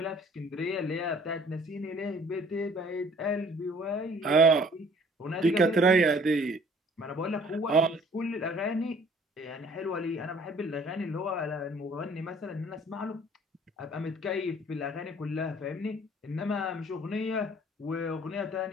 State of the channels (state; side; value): normal; both; correlation 0.55